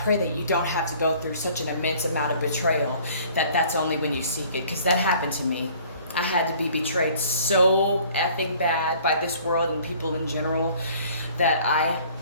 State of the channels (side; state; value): both; inverted; correlation -0.54